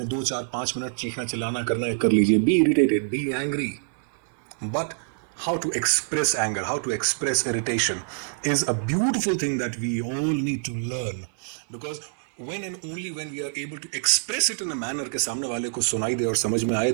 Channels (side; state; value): left; silent; 61 dB below the other